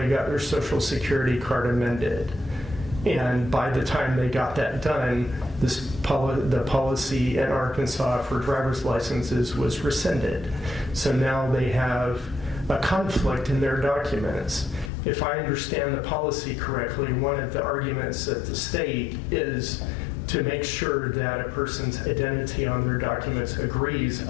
got their Social Security card amended. And by the time they got that done, the policy in Arkansas for driver's licenses was rescinded. So now they have a conflict in their documents. If I understand the policy correctly, one of the arguments at the state is to make sure that a person's identity on their documents agrees,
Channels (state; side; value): drops out; right; at 14.9 s